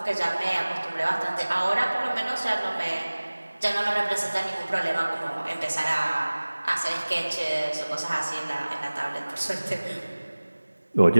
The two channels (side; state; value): both; inverted; correlation -1.00